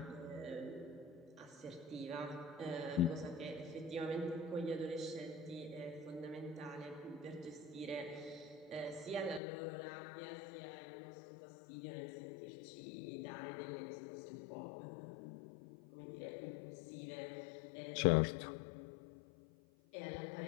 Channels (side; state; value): right; drops out; at 9.4 s